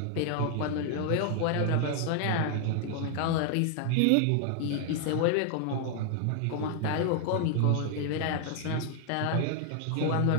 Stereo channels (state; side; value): different; both; correlation 0.00